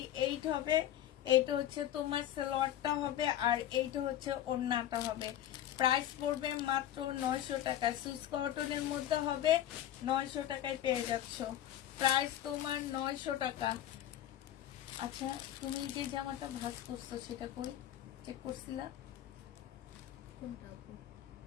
হবে। এটা হচ্ছে তোমার সালোয়ারটা হবে, আর এইটা হচ্ছে ওড়নাটা হবে। প্রাইস পড়বে মাত্র 900 টাকা। সুইস কটনের মধ্যে হবে, 900 টাকায় পেয়ে যাচ্ছ। প্রাইস তোমার 900 টাকা। আচ্ছা, তুমি যে জামাটা ভাঁজ করছো সেটা কই চেক করছিলা? কোনটা আপু?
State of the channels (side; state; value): right; quieter; 12.0 dB